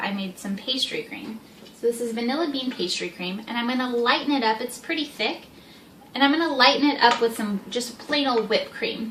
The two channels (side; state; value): both; identical; correlation 1.00